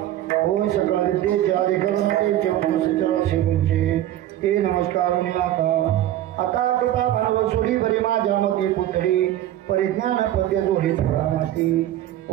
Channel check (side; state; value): left; quieter; 13.1 dB